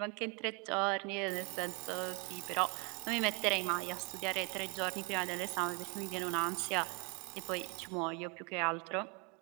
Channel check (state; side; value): quieter; left; 32.0 dB